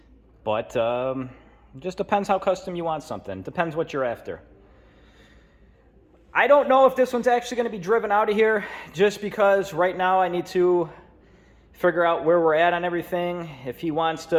But it just depends how custom you want something. Depends what you're after. I don't know if this one's actually going to be driven out of here, just because right now I need to figure out where we're at on everything. If he wants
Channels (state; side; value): identical; both; correlation 1.00